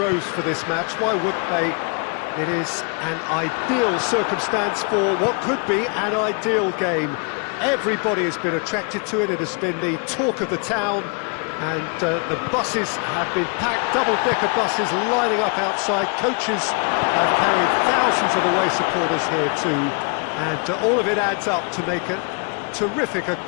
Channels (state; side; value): quieter; right; 37.3 dB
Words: for this match. Why wouldn't they? It is an ideal circumstance for what could be an ideal game. Everybody has been attracted to it. It has been the talk of the town. And the buses have been packed, double-decker buses lining up outside. Coaches have carried thousands of away supporters here too. And all of it adds up to make a terrific, a